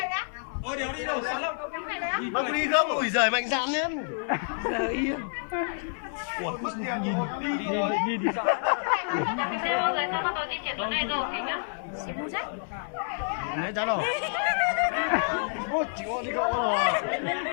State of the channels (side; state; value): right; silent; 59 dB below the other